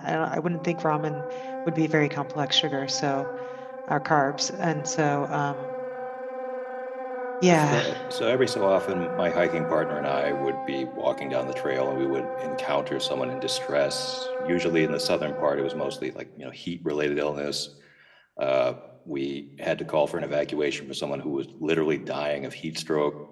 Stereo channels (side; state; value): both; identical; correlation 1.00